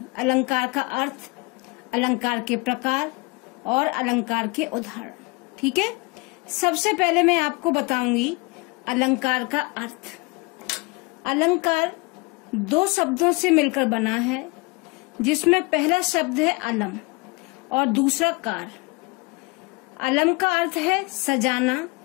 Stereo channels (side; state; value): right; quieter; 27.5 dB